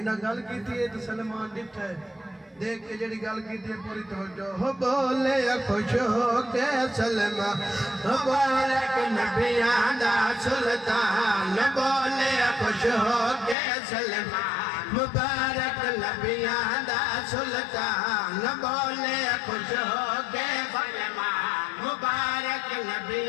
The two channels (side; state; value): right; drops out; at 13.6 s